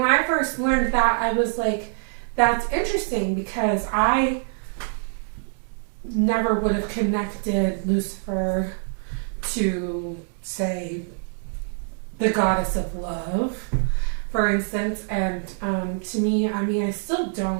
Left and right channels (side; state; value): left; silent; 62 dB below the other